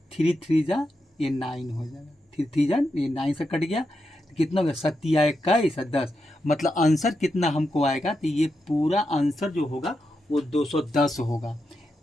3 3 जा ये 9 हो जाएगा, 3 3 जा ये 9 से कट गया, तो कितना हो गया, 7 21 10, मतलब आंसर कितना हमको आएगा, तो ये पूरा आंसर जो होगा वो 210 होगा।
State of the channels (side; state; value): both; normal; correlation 0.86